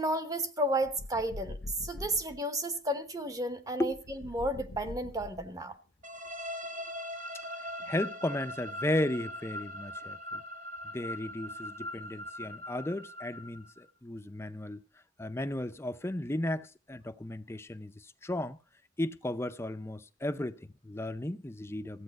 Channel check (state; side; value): normal; both; correlation 0.60